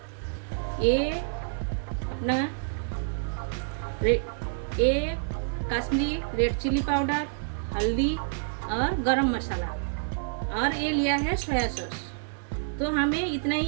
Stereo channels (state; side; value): silent; left; 59 dB below the other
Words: ये अपना ये कश्मीरी रेड चिली पाउडर, हल्दी और गरम मसाला। और ये लिया है सोया सॉस। तो हमें इतना ही